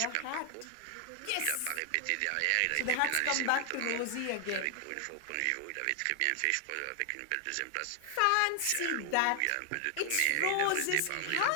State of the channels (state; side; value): different; both; correlation 0.00